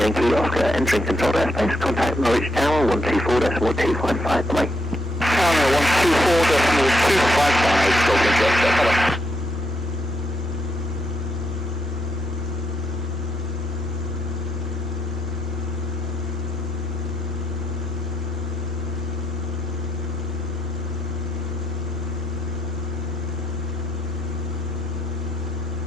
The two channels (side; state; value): both; normal; correlation 0.78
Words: Oscar entering controlled airspace, contact Norwich Tower 124.255, bye. Tower 124.255, Golf Yankee Oscar, hello.